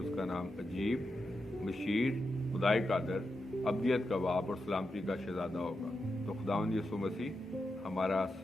کا نام عجیب، مشیر، خدائے قادر، ابدیت کا باپ اور سلامتی کا شہزادہ ہوگا. تو خداوند یسوع مسیح ہمارا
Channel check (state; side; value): normal; both; correlation 0.87